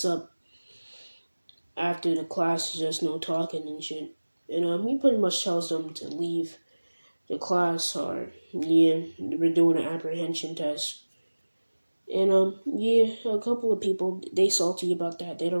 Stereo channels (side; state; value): both; inverted; correlation -1.00